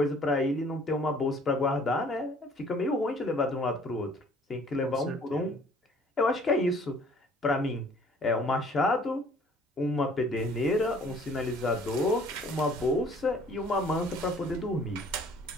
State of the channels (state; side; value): normal; both; correlation 0.55